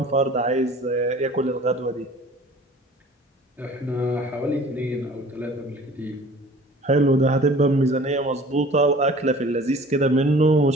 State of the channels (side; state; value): both; normal; correlation 0.47